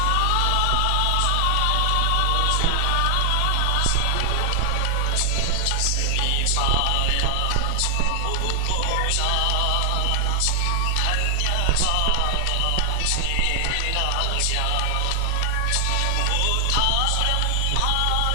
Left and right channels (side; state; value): both; different; correlation 0.00